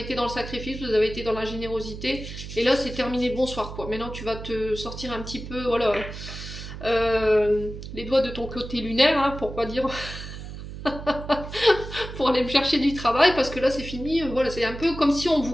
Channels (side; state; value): right; noise; hum, 10 dB below the sound